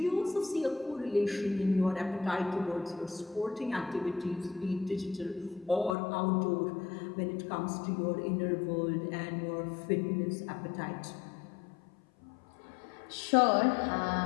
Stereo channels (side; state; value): right; drops out; at 6.0 s